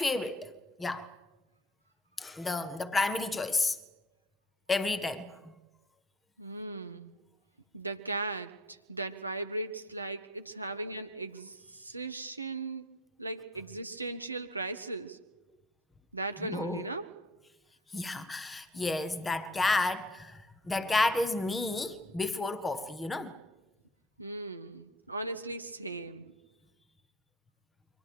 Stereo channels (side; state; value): both; normal; correlation 0.53